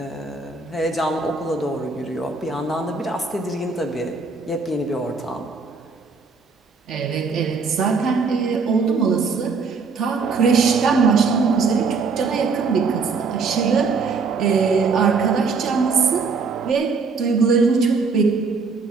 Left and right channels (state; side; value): quieter; left; 4.6 dB